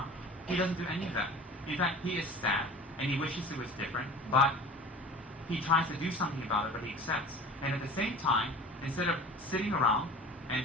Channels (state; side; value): normal; both; correlation 0.41